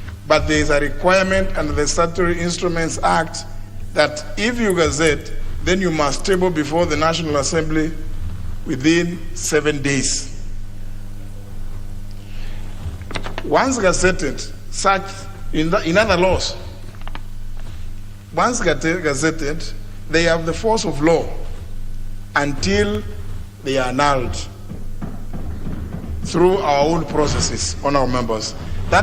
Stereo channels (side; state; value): both; identical; correlation 1.00